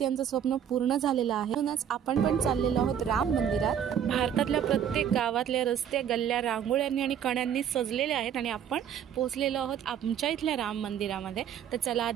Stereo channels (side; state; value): left; quieter; 9.0 dB